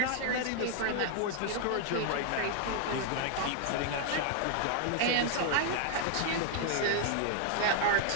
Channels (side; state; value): both; different; correlation 0.00